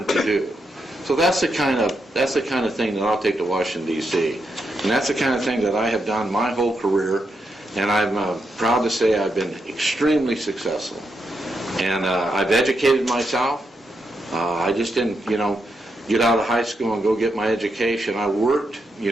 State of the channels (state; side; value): normal; both; correlation 0.83